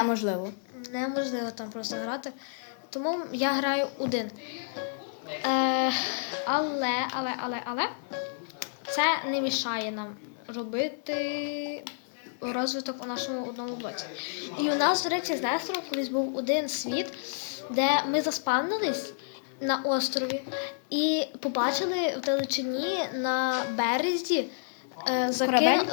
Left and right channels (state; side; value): silent; right; digital silence